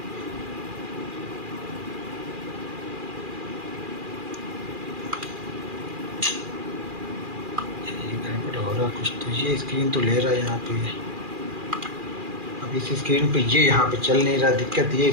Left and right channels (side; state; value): left; late; 2.4 ms